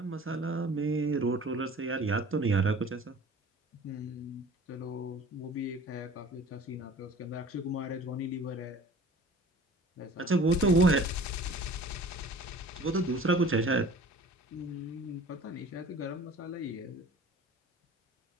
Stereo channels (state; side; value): normal; both; correlation 0.45